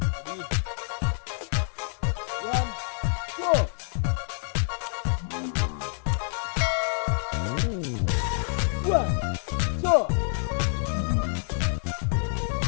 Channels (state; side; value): silent; right; 60 dB below the other